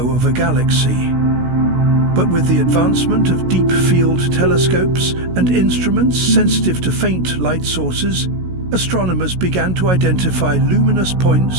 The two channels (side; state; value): left; late; 16 ms